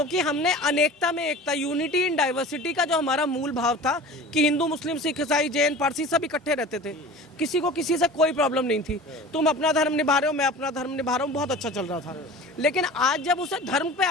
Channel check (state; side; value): normal; both; correlation 0.38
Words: हमने अनेकता में एकता, यूनिटी इन डाइवर्सिटी का जो हमारा मूल भाव था कि हिंदू मुस्लिम सिख ईसाई जैन पारसी सब इकट्ठे रहते थे, किसी को किसी से कोई प्रॉब्लम नहीं थी। तुम अपना धर्म निभा रहे हो, मैं अपना धर्म निभा रहा हूँ, बहुत अच्छा चल रहा था। लेकिन आज जब उसे धर्म पे